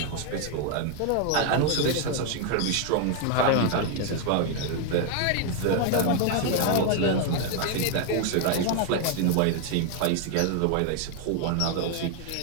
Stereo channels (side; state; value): both; different; correlation 0.01